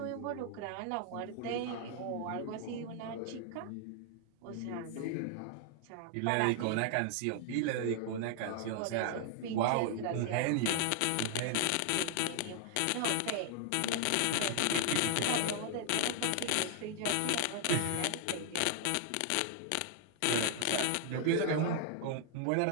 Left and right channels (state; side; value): different; both; correlation 0.00